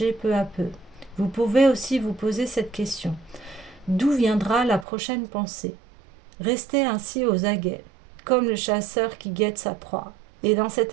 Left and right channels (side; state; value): left; drops out; at 4.9 s